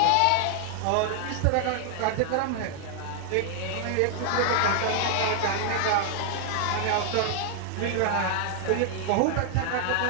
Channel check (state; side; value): different; both; correlation 0.00